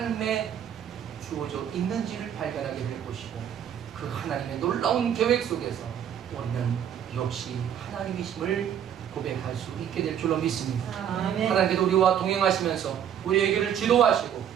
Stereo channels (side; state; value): left; quieter; 9.3 dB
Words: 주어져 있는지를 발견하게 될 것이고, 그 하나님의 놀라운 계획 속에서 우리는 역시 하나님이심을 고백할 수 있게 될 줄로 믿습니다. 아멘. 하나님께서 우리와 동행하시면서 우리에게를 지도하시고